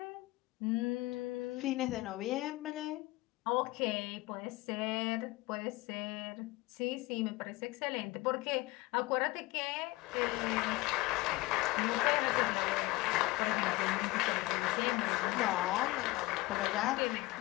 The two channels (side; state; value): right; quieter; 20.3 dB